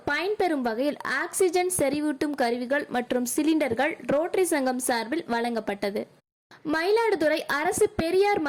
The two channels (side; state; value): both; identical; correlation 1.00